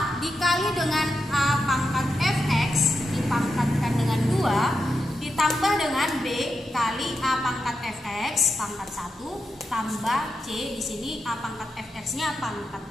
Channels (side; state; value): both; normal; correlation 0.87